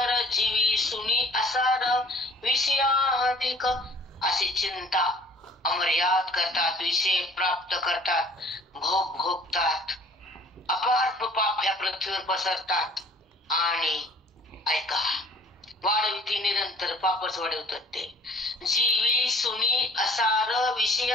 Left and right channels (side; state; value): both; normal; correlation 0.53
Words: जीवी सुनी असार, विषयाधिक. अशी चिंता अमर्याद करतात, विषय प्राप्त करतात, भोग भोगतात, अपार पाप ह्या पृथ्वीवर पसरतात. आणि ऐका, वाढविती निरंतर, पापच वाढवतात ते. जीवी सुनी असार,